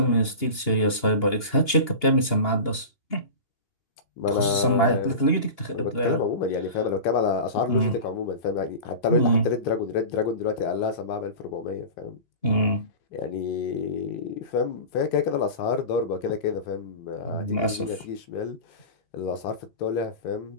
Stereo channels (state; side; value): late; right; 2.8 ms